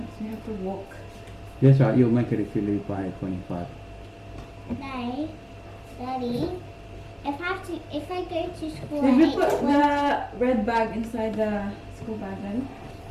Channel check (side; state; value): both; identical; correlation 1.00